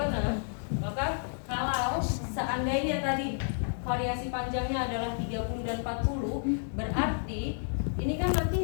Maka kalau seandainya tadi variasi panjangnya adalah 30 dan 40, berarti ini kan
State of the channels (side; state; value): right; silent; digital silence